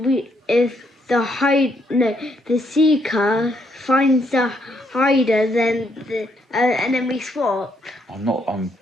if the seeker finds the hider, then and then we swap. I'm a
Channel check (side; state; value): both; normal; correlation 0.74